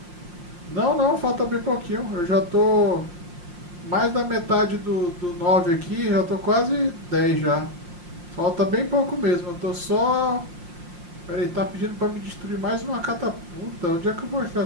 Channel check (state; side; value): late; left; 5.6 ms